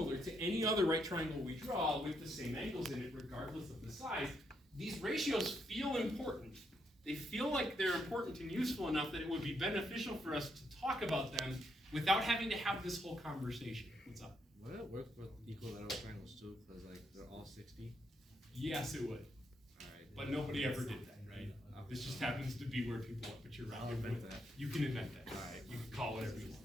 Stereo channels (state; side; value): normal; both; correlation 0.77